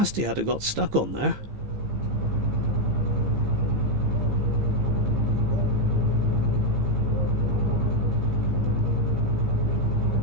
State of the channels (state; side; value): late; left; 15 ms